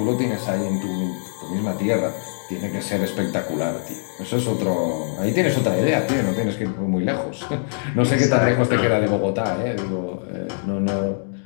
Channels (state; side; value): silent; right; digital silence